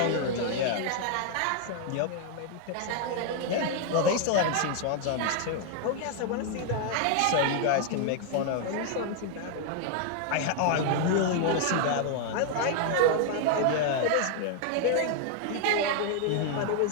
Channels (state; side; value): different; both; correlation 0.00